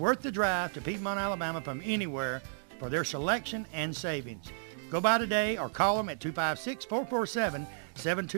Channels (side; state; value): left; silent; digital silence